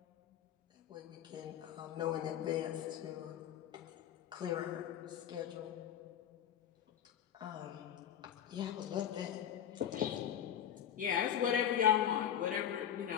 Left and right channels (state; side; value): quieter; right; 9.8 dB